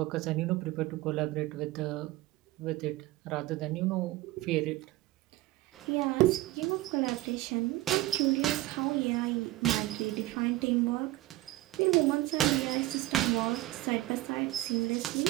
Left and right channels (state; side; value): quieter; left; 17.3 dB